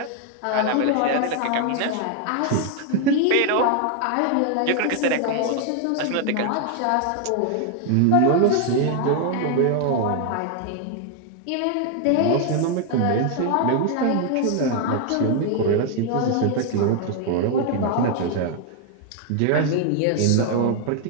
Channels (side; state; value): both; different; correlation 0.00